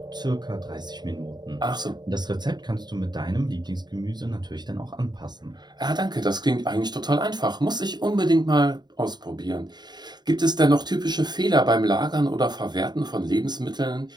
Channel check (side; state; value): left; late; 0.20 ms